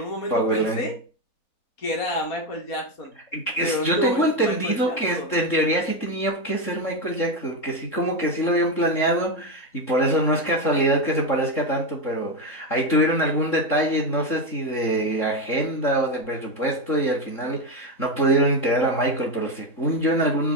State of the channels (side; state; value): right; late; 3.7 ms